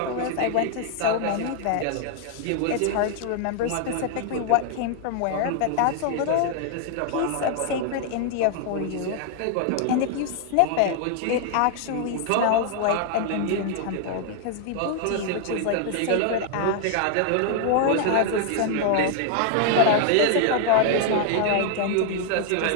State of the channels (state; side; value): different; both; correlation 0.00